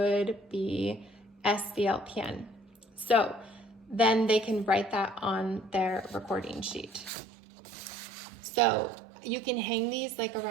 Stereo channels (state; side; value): drops out; left; at 7.1 s